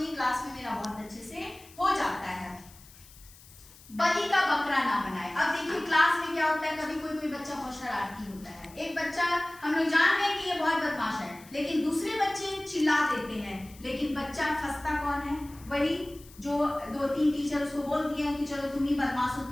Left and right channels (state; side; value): noise; left; hiss, 22 dB below the sound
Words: नहीं, क्लास में मेरा बहुत अच्छे से हो जाता है। बलि का बकरा ना बनाए। अब देखिए क्लास में क्या होता है, कभी कोई बच्चा बहुत शरारती होता है, एक बच्चा हम लोग जान रहे हैं कि ये बहुत बदमाश है, लेकिन दूसरे बच्चे चिल्ला देते हैं, लेकिन बच्चा फंसता कौन है? वही जो 2-3 टीचर उसको बोल दिए हैं कि चलो तुम ही बदमाश हो,